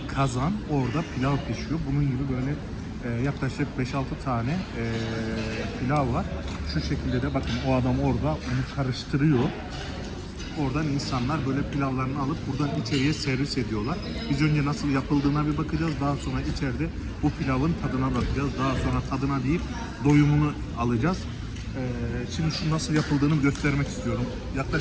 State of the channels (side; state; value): both; identical; correlation 1.00